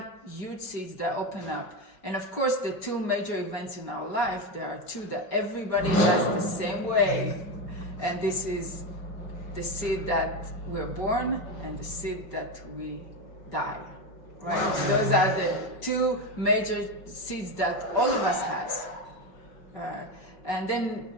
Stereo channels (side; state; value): right; late; 5.4 ms